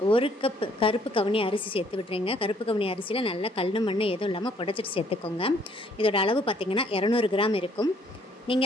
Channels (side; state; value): both; normal; correlation 0.64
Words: 1 கப் கருப்பு கவுனி அரிசி சேர்த்து விட்டுறேங்க. கருப்பு கவுனி அரிசியில் நல்லா கல் மண் எதுவும் இல்லாமல் புடைச்சிட்டு சேர்த்துக்கோங்க. இதோட அளவு பார்த்திங்கன்னா 200 கிராம் இருக்கும்.